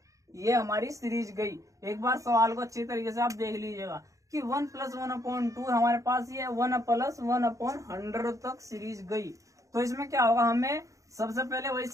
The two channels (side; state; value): left; late; 0.16 ms